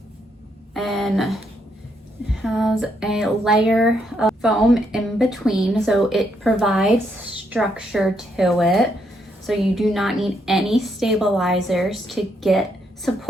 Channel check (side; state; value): both; normal; correlation 0.76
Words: and has a layer of foam in between, so it provides structure to it, so you do not need any stabilizers to get